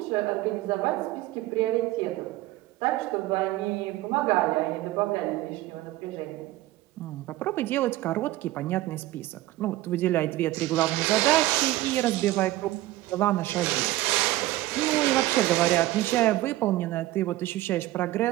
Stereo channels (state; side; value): quieter; left; 16.9 dB